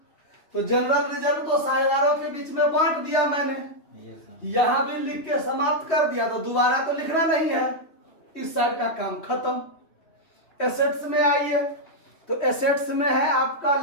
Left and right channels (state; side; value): late; right; 3.1 ms